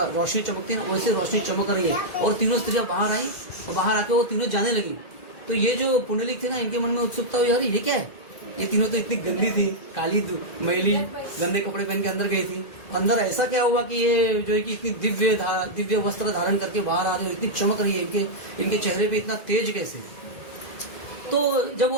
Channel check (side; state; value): right; late; 2.0 ms